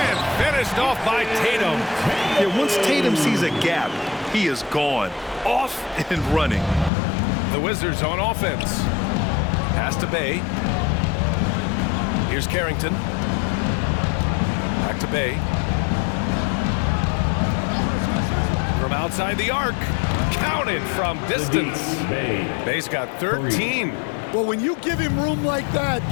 finished off by Tatum. Yeah, once Tatum sees a gap, he is gone. Off and running. The Wizards on offense. Pass to Bay. Here's Carrington. Back to Bay. From outside the arc. Counted from distance. Bay's got 13. Well, when you give him room like that,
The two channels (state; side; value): drops out; right; at 6.9 s